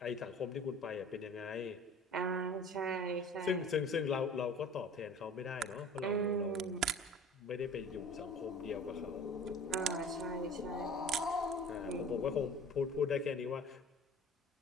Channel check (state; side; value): normal; both; correlation 0.44